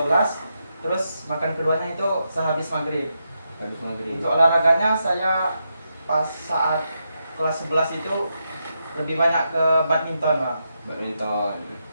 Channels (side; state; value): both; inverted; correlation -0.83